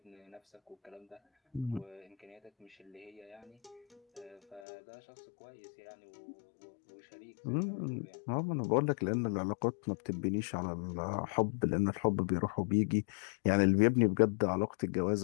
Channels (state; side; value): drops out; right; at 4.6 s